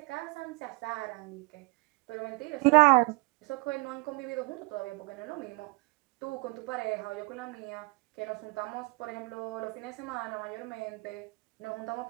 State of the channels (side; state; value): left; quieter; 28.1 dB